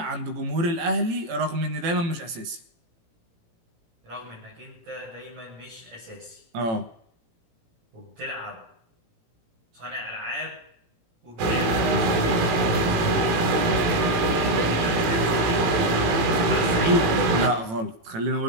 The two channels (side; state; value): left; late; 18 ms